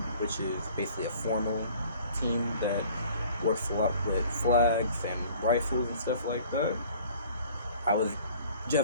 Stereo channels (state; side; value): inverted; both; correlation -0.51